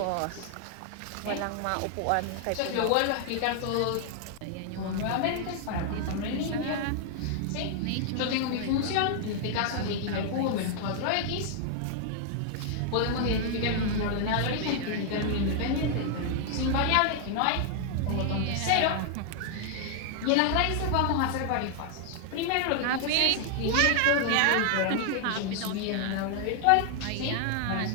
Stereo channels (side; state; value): both; different; correlation 0.00